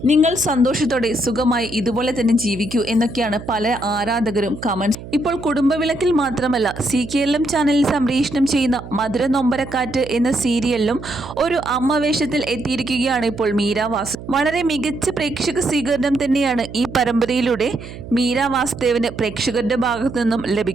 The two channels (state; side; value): noise; right; hum, 13 dB below the sound